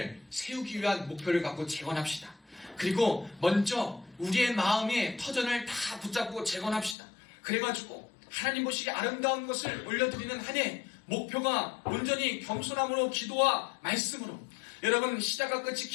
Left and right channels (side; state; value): right; drops out; at 7.0 s